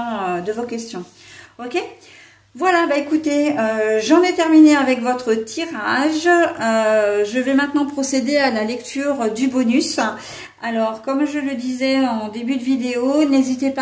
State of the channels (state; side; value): identical; both; correlation 1.00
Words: Ok, voilà, bah écoutez, j'en ai terminé avec votre tirage. Je vais maintenant procéder à la lecture du bonus. Alors, comme je le disais en début de vidéo, n'hésitez